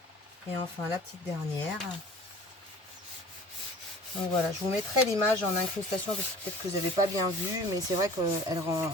Et enfin, la petite dernière. Donc voilà, je vous mettrai l'image en incrustation parce que peut-être que vous n'avez pas bien vu, mais c'est vrai qu'elle rend,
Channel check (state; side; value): normal; both; correlation 0.45